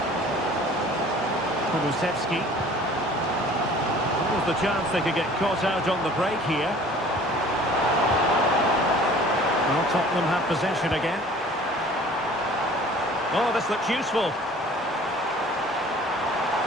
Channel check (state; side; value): normal; both; correlation 0.49